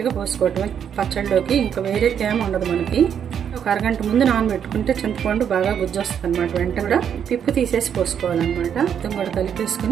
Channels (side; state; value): left; quieter; 8.4 dB